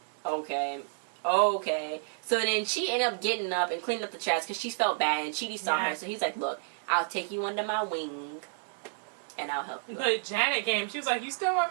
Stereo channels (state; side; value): silent; left; digital silence